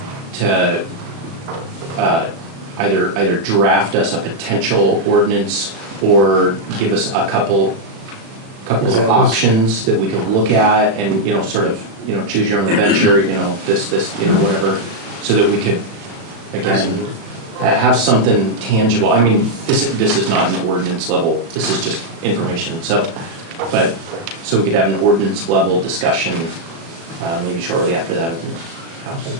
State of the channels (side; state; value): left; late; 36 ms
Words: to either draft us a potential ordinance or give us a couple of options that we could look at and, sort of, choose your own adventure, this, whatever, so that we could, again, have something tangible. I mean, this is not an ordinance level, this is just information, so we could have an ordinance level discussion, maybe shortly after that.